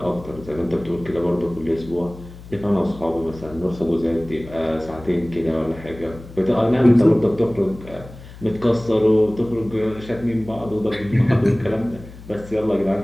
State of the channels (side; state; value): left; noise; hum, 17 dB below the sound